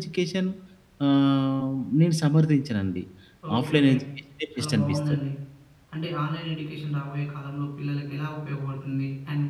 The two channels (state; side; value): identical; both; correlation 1.00